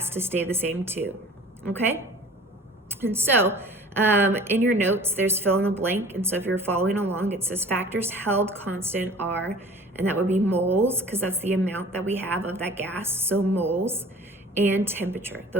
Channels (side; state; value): both; normal; correlation 0.45